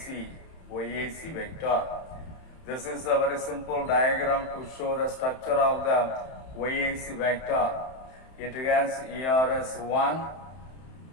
vector. This is a very simple diagram to show the structure of the YAC vector. It has ERS1,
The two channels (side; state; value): right; late; 31 ms